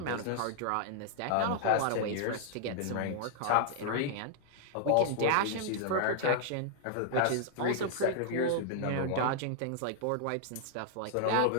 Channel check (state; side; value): different; both; correlation 0.00